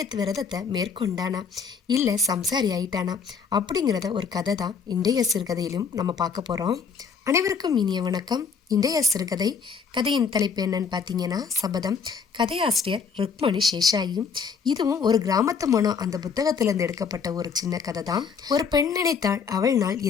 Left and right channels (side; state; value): right; quieter; 5.9 dB